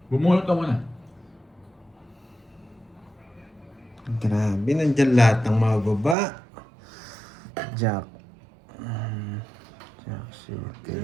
Bumunot ka muna. Grabe, nandyan lahat ng mga baba. Jack. Jack, shit.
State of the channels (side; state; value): left; drops out; at 6.2 s